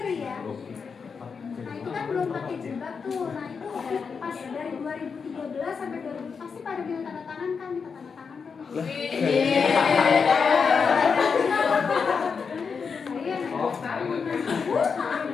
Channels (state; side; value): quieter; right; 5.7 dB